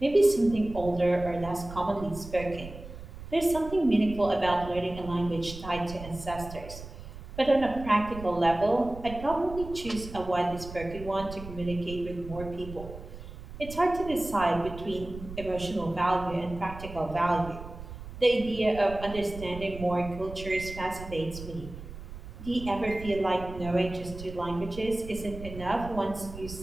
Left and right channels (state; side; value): noise; right; rumble, 12 dB below the sound